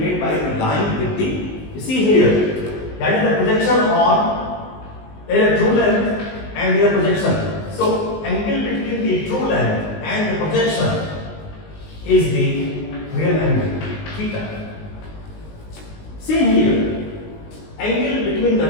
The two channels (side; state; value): right; late; 19 ms